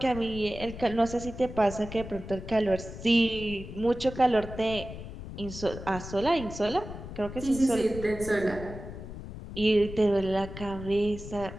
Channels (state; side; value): noise; left; rumble, 11 dB below the sound